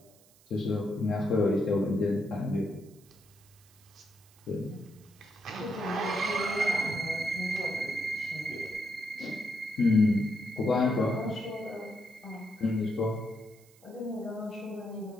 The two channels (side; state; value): right; noise; hiss, 28 dB below the sound